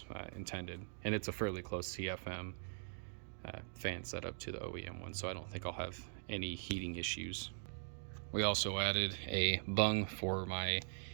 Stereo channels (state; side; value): silent; left; digital silence